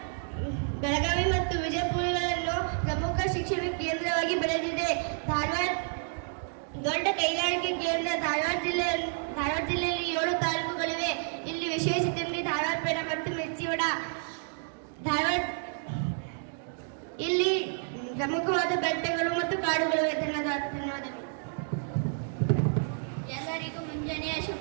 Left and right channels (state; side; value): silent; left; 58 dB below the other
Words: ಬೆಳಗಾವಿ ಮತ್ತು ವಿಜಯಪುರಗಳನ್ನು ಪ್ರಮುಖ ಶಿಕ್ಷಣ ಕೇಂದ್ರವಾಗಿ ಬೆಳೆದಿದೆ. ಧಾರವಾಡ ದೊಡ್ಡ ಕೈಗಾರಿಕೆ ಕೇಂದ್ರ. ಧಾರವಾಡ ಜಿಲ್ಲೆಯಲ್ಲಿ 7 ತಾಲೂಕುಗಳಿವೆ. ಇಲ್ಲಿ ವಿಶೇಷತೆಯಲ್ಲಿ ಧಾರವಾಡ ಪೇಡ ಮತ್ತು ಮಿರ್ಚಿವಡ. ಇಲ್ಲಿ ಪ್ರಮುಖವಾದ ಬೆಟ್ಟಗಳು ಮತ್ತು ಕಾಡುಗಳಿವೆ. ಧನ್ಯವಾದಗಳು. ಎಲ್ಲರಿಗೂ ಮುಂಜಾನೆಯ